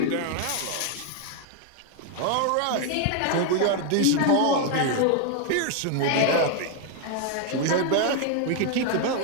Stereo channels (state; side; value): different; both; correlation 0.01